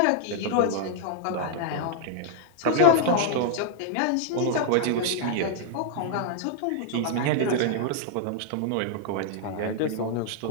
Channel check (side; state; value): both; different; correlation -0.01